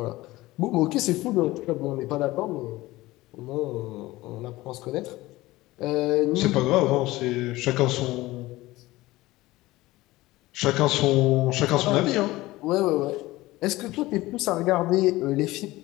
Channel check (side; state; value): right; quieter; 18.6 dB